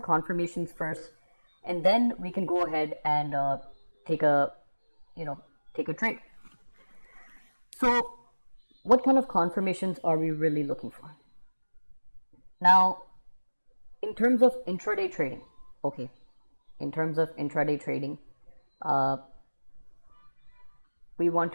first, and then we can go ahead and take a trade. So what kind of confirmations are we really looking for? Now, in terms of intraday trading, okay, we want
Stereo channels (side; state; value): both; inverted; correlation -1.00